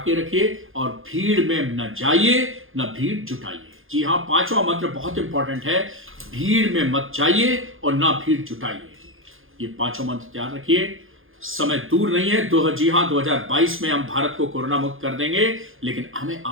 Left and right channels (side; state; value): left; late; 0.59 ms